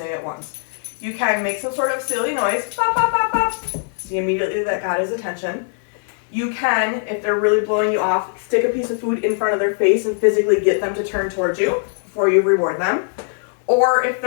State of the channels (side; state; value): right; silent; 66 dB below the other